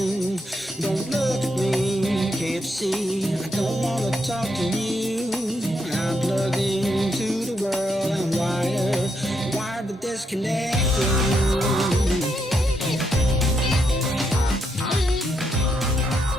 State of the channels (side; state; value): both; normal; correlation 0.79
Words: Don't look at me, can't see. I don't wanna talk to you. I'm plugged into the world. I'm wired to disconnect you.